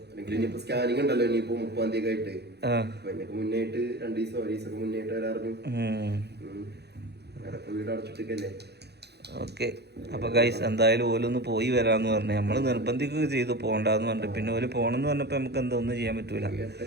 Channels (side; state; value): left; late; 0.48 ms